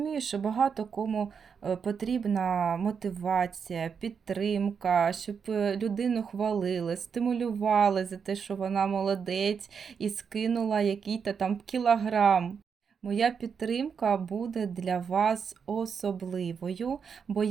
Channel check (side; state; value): left; quieter; 6.4 dB